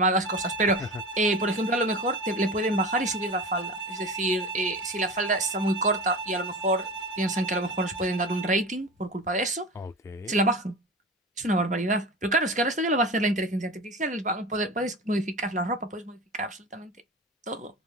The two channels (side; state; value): both; normal; correlation 0.30